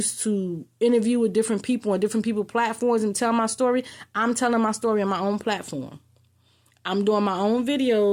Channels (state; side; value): identical; both; correlation 1.00